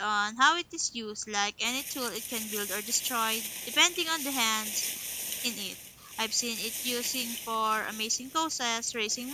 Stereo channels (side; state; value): both; identical; correlation 1.00